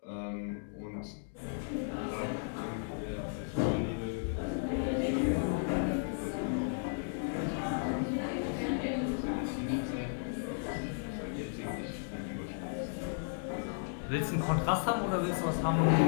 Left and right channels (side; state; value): right; silent; digital silence